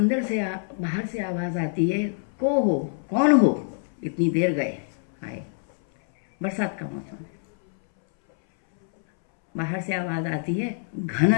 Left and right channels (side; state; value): right; silent; 62 dB below the other